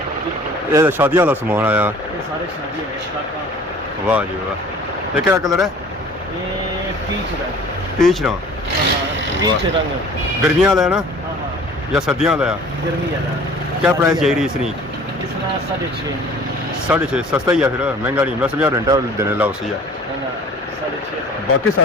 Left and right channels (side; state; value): both; normal; correlation 0.48